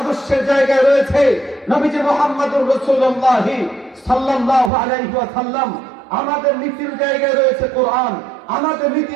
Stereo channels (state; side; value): drops out; left; at 4.7 s